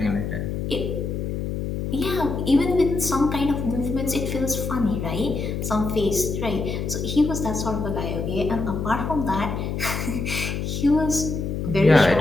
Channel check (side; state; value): left; noise; hum, 3 dB below the sound